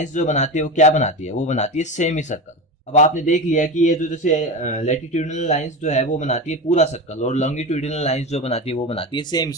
जो बनाती है वो क्या बनाती है? वो बनाती है सेमी सर्कल। अब आपने देख लिया कि ये जो जैसे लैटिट्यूडिनल लाइंस जो है वो बनाती है पूरा सर्कल, और लॉन्गिट्यूडिनल लाइंस जो बनाती है वो बनाती है सेमी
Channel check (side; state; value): both; normal; correlation 0.23